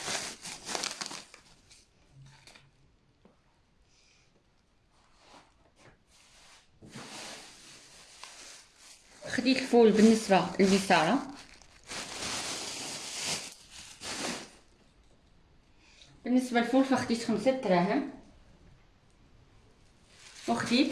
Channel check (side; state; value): both; identical; correlation 1.00